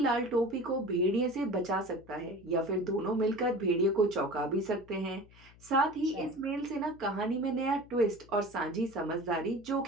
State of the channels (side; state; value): left; noise; hum, 24 dB below the sound